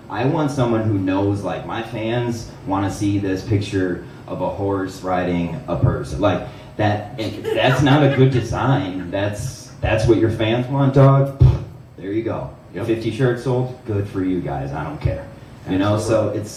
want someone who knows, like, my fans want to see this picture of a horse riding a person. Like that's not a good design. That's what your fans want, dog. There you go. Yep. 50 shirts sold, good for you guys. I don't care. So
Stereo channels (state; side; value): identical; both; correlation 1.00